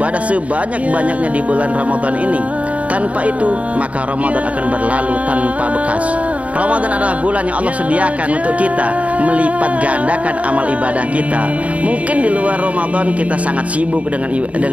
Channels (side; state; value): left; late; 0.067 ms